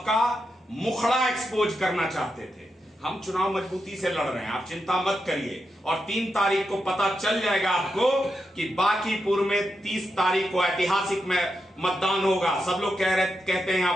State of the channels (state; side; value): normal; both; correlation 0.86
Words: मुखड़ा एक्सपोज करना चाहते थे। हम चुनाव मजबूती से लड़ रहे हैं, आप चिंता मत करिए। और 3 तारीख को पता चल जाएगा आपको कि बांकीपुर में 30 तारीख को ऐतिहासिक में मतदान होगा। सब लोग कहते हैं यहां